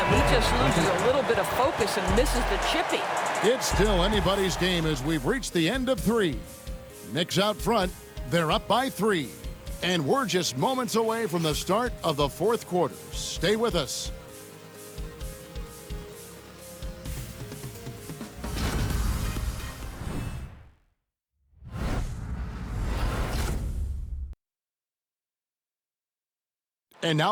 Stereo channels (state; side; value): identical; both; correlation 1.00